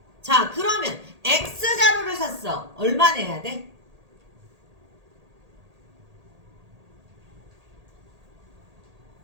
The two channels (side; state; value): left; late; 1.8 ms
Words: 자, 그러면 X자루를 샀어. 얼마 내야 돼?